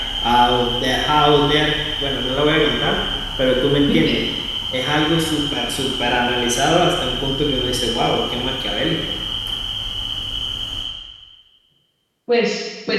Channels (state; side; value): identical; both; correlation 1.00